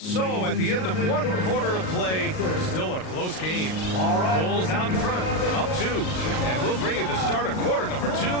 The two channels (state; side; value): late; right; 38 ms